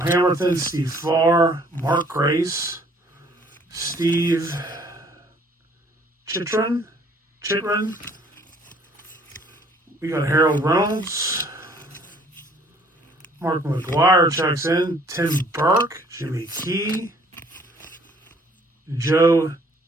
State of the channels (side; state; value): both; normal; correlation 0.58